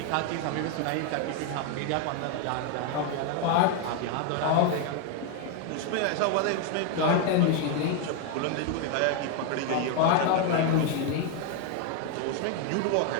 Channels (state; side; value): different; both; correlation 0.01